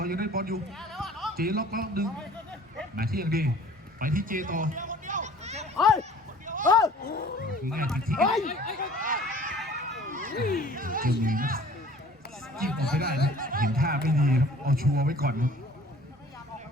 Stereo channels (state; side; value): normal; both; correlation 0.49